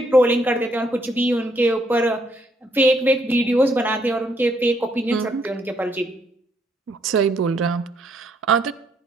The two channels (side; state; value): both; normal; correlation 0.71